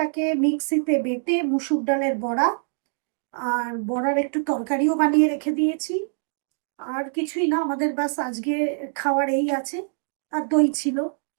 মিক্সিতে বেটে মুসুর ডালের বড়া, আর বড়ার একটু তরকারিও বানিয়ে রেখে দিয়েছি। আর কিছুই না, আমাদের বাস আজকে খাওয়ার এই আছে। আর দই ছিল।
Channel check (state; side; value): silent; left; digital silence